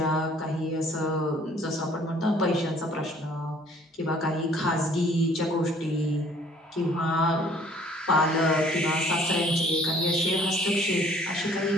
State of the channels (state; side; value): normal; both; correlation 0.57